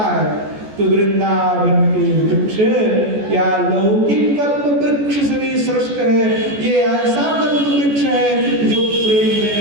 है। तो वृंदावन के वृक्ष या लौकिक कल्प वृक्ष से भी श्रेष्ठ है। ये ऐसा कल्प वृक्ष है जो प्रेम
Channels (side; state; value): left; late; 14 ms